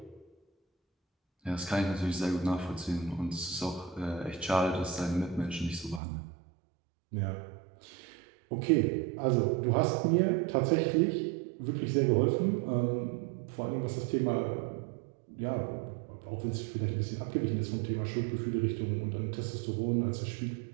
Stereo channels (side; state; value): left; drops out; at 6.0 s